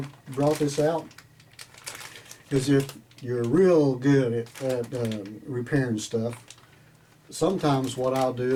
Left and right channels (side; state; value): both; identical; correlation 1.00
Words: brought this out is if you're real good at repairing stuff, sometimes what I'll